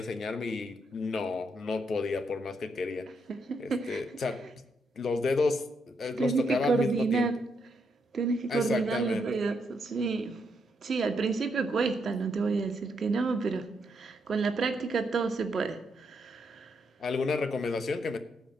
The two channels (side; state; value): both; normal; correlation 0.78